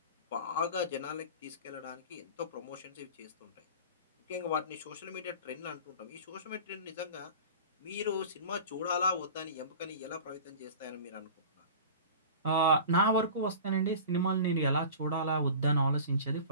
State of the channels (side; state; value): both; inverted; correlation -0.37